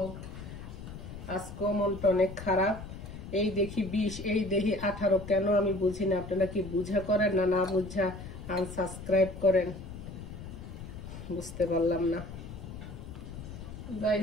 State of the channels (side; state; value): left; noise; rumble, 11 dB below the sound